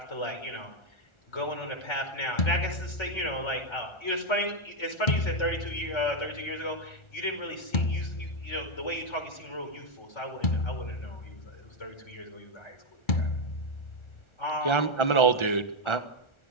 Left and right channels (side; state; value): right; late; 1.4 ms